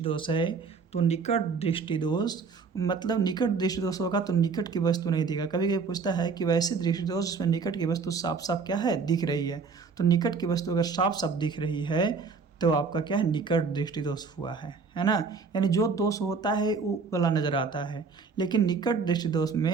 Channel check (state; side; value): quieter; left; 5.0 dB